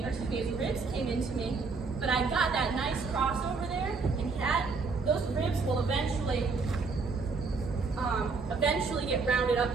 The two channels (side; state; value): left; quieter; 4.5 dB